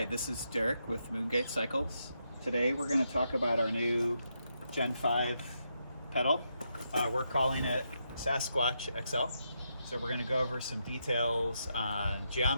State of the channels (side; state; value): both; inverted; correlation -0.82